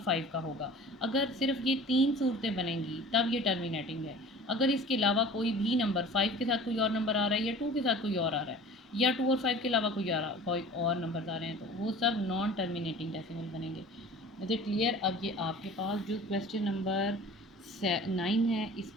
5 का होगा। अगर सिर्फ ये 3 सूरतें बनेंगी तब ये टर्मिनेटिंग है। अगर इसके अलावा कोई भी नंबर 5 के साथ कोई और नंबर आ रहा है या 2 के साथ कोई और आ रहा है या 2 और 5 के अलावा कोई और नंबर आ रहे हैं, तो वो सब नॉन टर्मिनेटिंग डेसिमल बनेंगे। Is it clear? अब ये आपके पास जो क्वेश्चन नंबर 9 है,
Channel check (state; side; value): normal; both; correlation 0.43